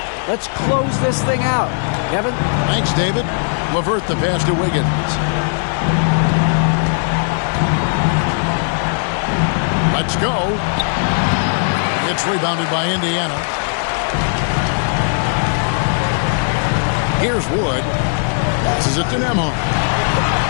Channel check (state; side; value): silent; right; 68 dB below the other